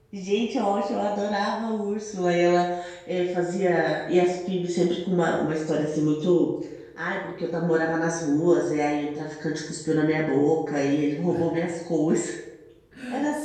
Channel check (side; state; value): both; identical; correlation 1.00